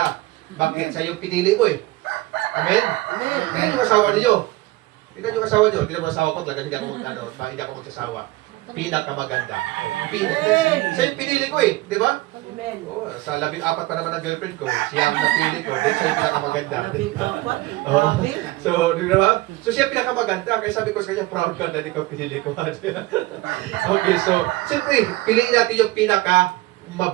Bakit? Sa yung pinili mo eh. Amen? Amen. Yung asawa niyo. Tignan yung asawa nyo. Tignan mo asawa ko. Talagang hindi ako magsasawa. Pinakamaganda. Sa yung pinili ko eh. Di ba? Oh, sa 14 pa naman ang girlfriend ko. Siya ang napili ko. Then siya yung pinakamaganda. Oh. So, di ba? So siya pinakamaganda. Kaya sabi ko sa kanya, proud ka na di ko pinili ko. Okay, so, siyempre, piliin natin yung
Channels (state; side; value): quieter; left; 19.4 dB